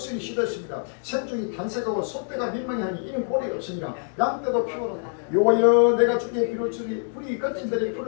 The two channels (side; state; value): right; silent; digital silence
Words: 시들었습니다. 생중이 탄색하고 소떼가 민망해하니 이는 고리가 없으니라. 양떼도 피곤하다. 여호와여 내가 주께 비로소리 불이 거친들이